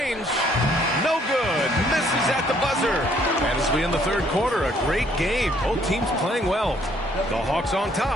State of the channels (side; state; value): both; normal; correlation 0.64